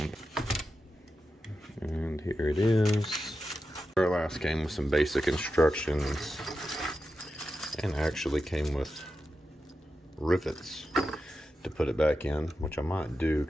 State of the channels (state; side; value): normal; both; correlation 0.90